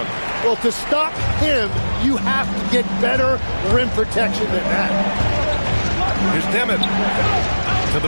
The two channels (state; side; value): inverted; both; correlation -1.00